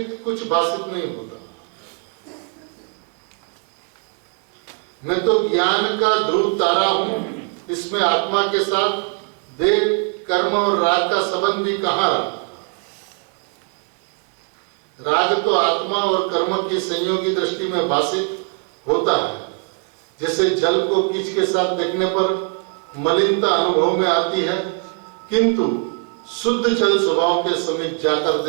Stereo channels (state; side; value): quieter; left; 34.7 dB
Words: कुछ भाषित नहीं होता। मैं तो ज्ञान का ध्रुव तारा हूं, इसमें आत्मा के साथ देह कर्म और राग का संबंध भी कहां रहा? राग तो आत्मा और कर्म की संयोगी दृष्टि में भाषित होता है। जैसे जल को कीच के साथ देखने पर मलिनता अनुभव में आती है, किंतु शुद्ध जल स्वभाव के समीप जाकर